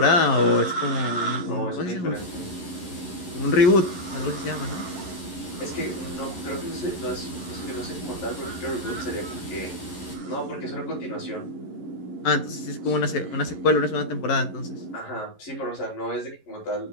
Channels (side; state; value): right; late; 11 ms